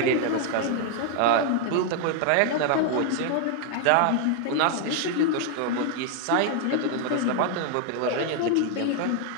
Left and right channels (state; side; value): different; both; correlation 0.00